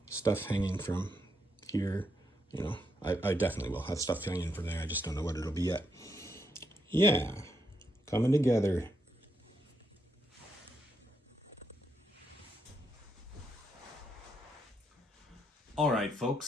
stuff hanging from here. You know, I definitely will have stuff hanging from there. I just don't know what it'll be yet. Yeah, coming together. All right,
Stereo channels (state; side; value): normal; both; correlation 0.79